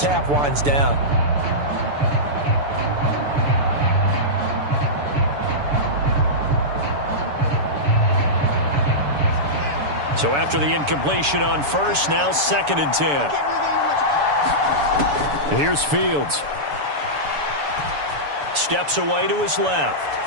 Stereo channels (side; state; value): left; late; 6.9 ms